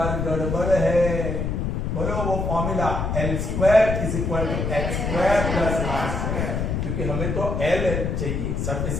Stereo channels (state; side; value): noise; left; rumble, 1 dB below the sound